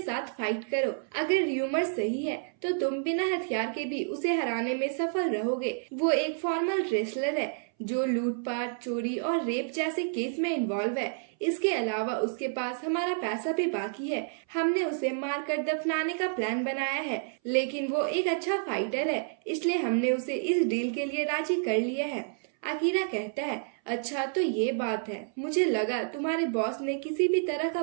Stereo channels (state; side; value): silent; left; 58 dB below the other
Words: साथ फाइट करो। अगर र्यूमर सही है तो तुम बिना हथियार के भी उसे हराने में सफल रहोगे। वो एक फॉर्मल रेसलर है जो लूटपाट, चोरी और रेप जैसे केस में इन्वॉल्व है। इसके अलावा उसके पास हमारा पैसा भी बाकी है। हमने उसे मारकर दफनाने का प्लान बनाया है, लेकिन वो एक अच्छा फाइटर है, इसलिए हमने उसे इस डील के लिए राजी कर लिया है। अकीरा कहता है अच्छा तो ये बात है, मुझे लगा तुम्हारे बॉस ने किसी भी तरह का